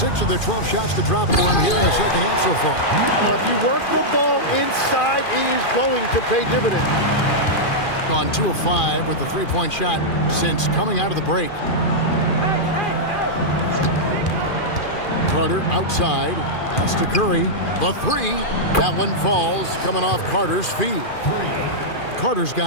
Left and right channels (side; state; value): right; late; 2.4 ms